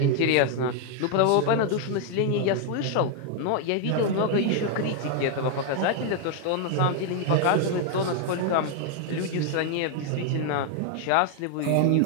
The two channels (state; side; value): different; both; correlation 0.01